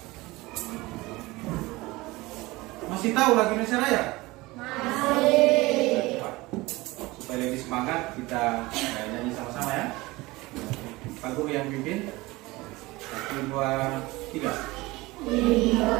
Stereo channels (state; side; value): quieter; left; 21.1 dB